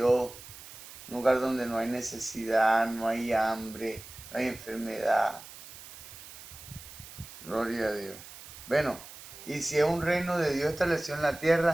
Un lugar donde no hay necesidad, no hay hambre, no hay enfermedad. Gloria a Dios. Bueno, y si es un reino de Dios establecido en la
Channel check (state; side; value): noise; right; hiss, 16 dB below the sound